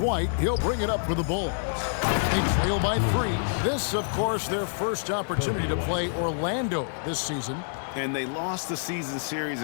He'll bring it up for the Bulls. They trail by 3. This, of course, their first opportunity to play Orlando this season. And they lost the season series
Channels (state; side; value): silent; right; digital silence